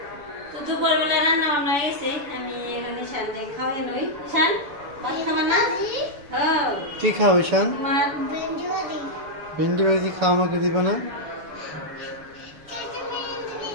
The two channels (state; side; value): late; left; 7.0 ms